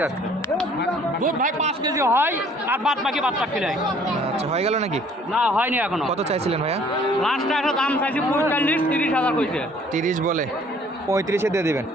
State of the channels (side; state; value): both; normal; correlation 0.57